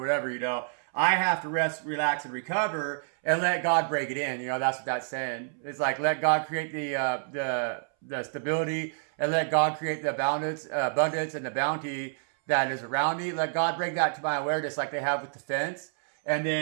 you know. I have to rest, relax, and recover and let God break it in. You know, that's what that's saying. It's like, let God create the stability, and let God create the abundance and the bounty that is around me. Let God bring that to my awareness like they have with the fence, and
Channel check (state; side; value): silent; left; 59 dB below the other